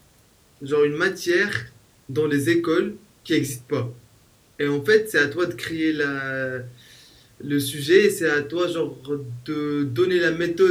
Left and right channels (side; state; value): both; identical; correlation 1.00